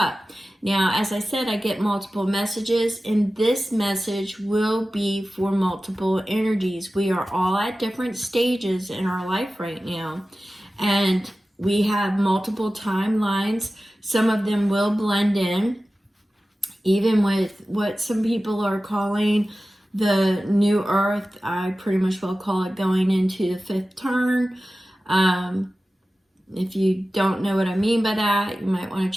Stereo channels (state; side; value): normal; both; correlation 0.95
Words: Now, as I said, I get multiple messages, and this message will be for multiple energies. We are all at different stages in our life right now, and we have multiple timelines. Some of them will blend in, even with what some people are calling the new earth. I pretty much will call it going into the 5th turn. If you don't know what I mean by that, you might want to